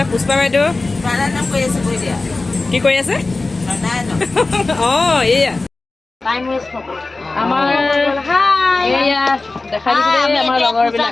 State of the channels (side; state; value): right; quieter; 3.4 dB